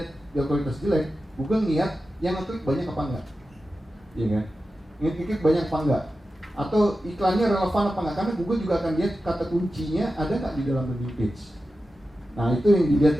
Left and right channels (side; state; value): both; normal; correlation 0.93